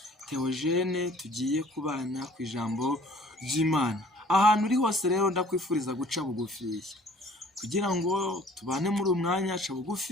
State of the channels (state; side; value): normal; both; correlation 0.54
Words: Theogene, tugiye kubana ku ijambo ry'Imana. Ahantu uri hose rero ndakwifuriza guca bugufiya kugira ngo tubane muri umwanya. Ca